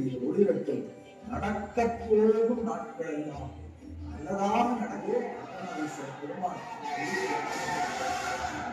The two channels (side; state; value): both; identical; correlation 1.00